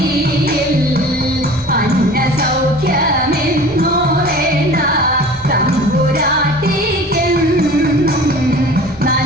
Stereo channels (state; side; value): normal; both; correlation 0.42